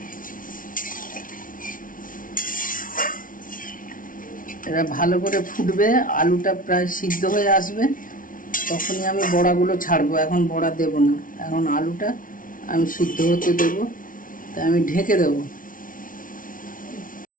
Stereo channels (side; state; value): right; late; 0.39 ms